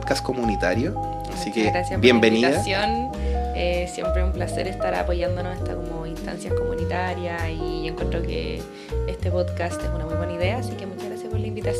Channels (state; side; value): identical; both; correlation 1.00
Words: comunitario. Así que gracias bienvenida. Por la invitación. Siempre un placer estar apoyándonos en estas como instancias comunitarias y encuentro que este podcast es una muy buena idea, así que muchas gracias por la